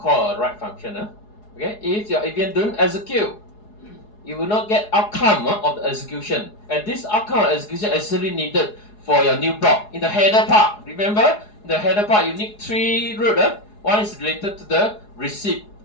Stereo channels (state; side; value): late; right; 4.8 ms